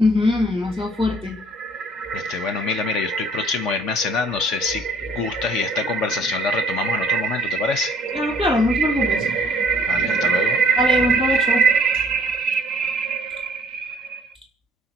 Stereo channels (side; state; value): both; normal; correlation 0.59